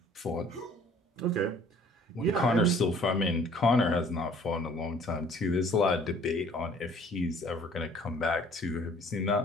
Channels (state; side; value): normal; both; correlation 0.55